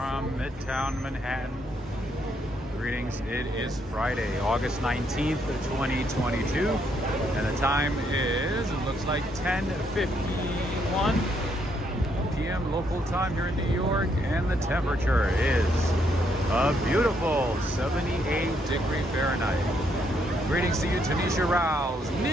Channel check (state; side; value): normal; both; correlation 0.74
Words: Midtown Manhattan. Greetings, it is Friday, August 19th, 2022, and the time is, it looks like 10:51 p.m. local time here in New York, and the temperature is a beautiful 78 Fahrenheit. Greetings to you, Tanisha Rouse,